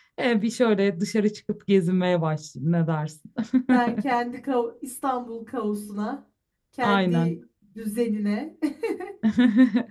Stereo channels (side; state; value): both; identical; correlation 1.00